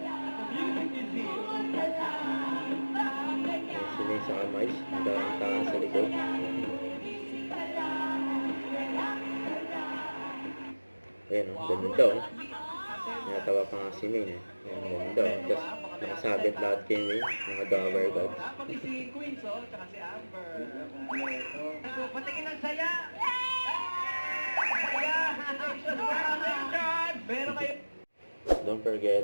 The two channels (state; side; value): inverted; both; correlation -1.00